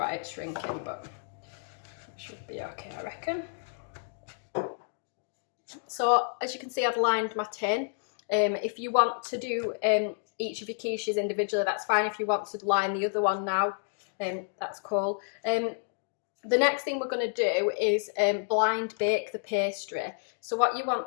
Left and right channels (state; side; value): silent; right; 58 dB below the other